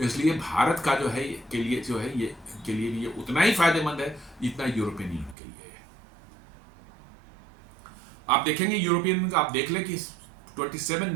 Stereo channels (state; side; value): drops out; left; at 5.4 s